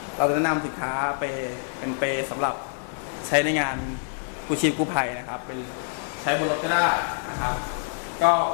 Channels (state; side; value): silent; right; digital silence